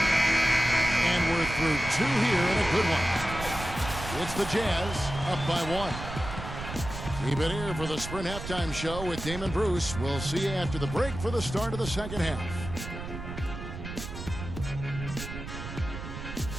And we're through 2 here and a good one. It's the Jazz up by 1. Keep it here for the Sprint Halftime Show with Damon Bruce. We'll see you after the break for the start of the second half.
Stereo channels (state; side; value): noise; right; rumble, 8 dB below the sound